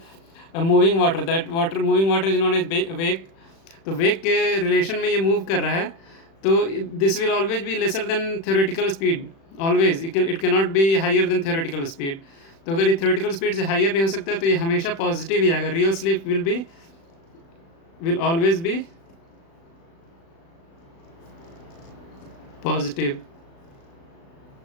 moving water, that water moving water is known as wake. तो वेक के रिलेशन में ये मूव कर रहा है, तो this will always be lesser than theoretical speed, always it can not be higher than theoretical speed. तो अगर ये थ्योरेटिकल स्पीड से हायर नहीं हो सकता तो ये हमेशा पॉजिटिव ही आएगा, real slip will always be positive।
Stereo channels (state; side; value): late; right; 36 ms